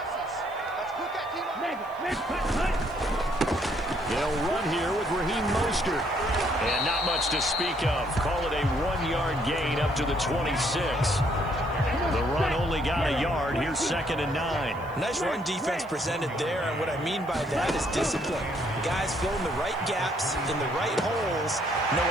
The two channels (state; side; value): noise; left; hiss, 29 dB below the sound